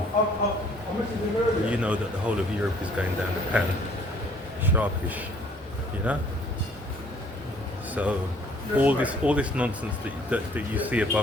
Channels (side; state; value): both; normal; correlation 0.58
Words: you know that the whole of Europe is going down the pan, sharpish, you know? So all this nonsense that you see